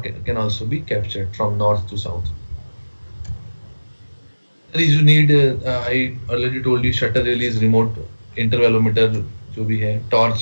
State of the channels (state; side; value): inverted; both; correlation -1.00